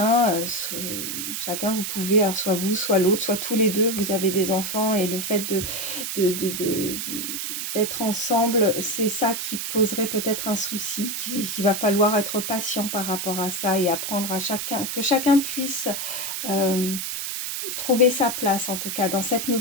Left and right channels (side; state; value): right; noise; hiss, 4 dB below the sound